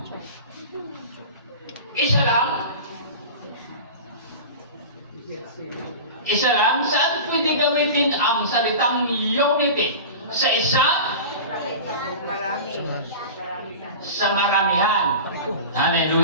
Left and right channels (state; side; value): inverted; both; correlation -0.32